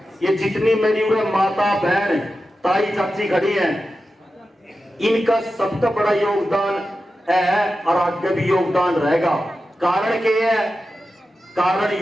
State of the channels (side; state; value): both; normal; correlation 0.92